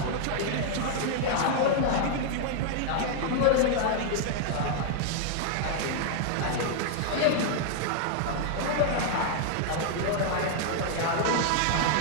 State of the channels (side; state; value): both; different; correlation 0.00